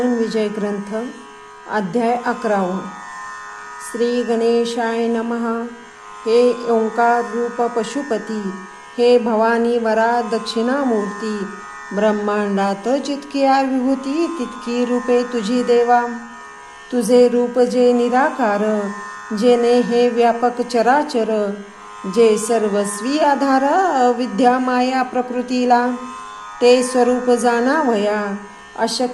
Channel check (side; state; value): both; identical; correlation 1.00